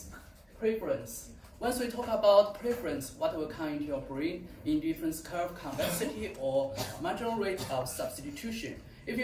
preference. Once we talk about preference, what will come into your brain? Indifference curve, convexity, or marginal rate of substitution. If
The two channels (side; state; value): both; identical; correlation 1.00